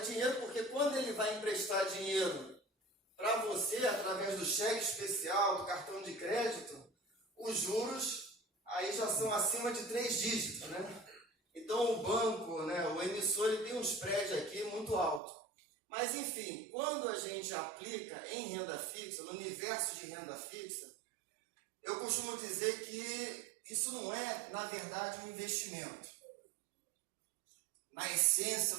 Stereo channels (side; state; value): left; drops out; at 15.2 s